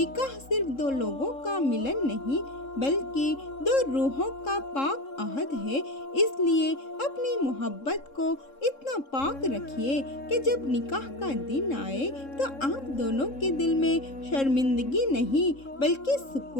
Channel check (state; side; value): late; right; 3.7 ms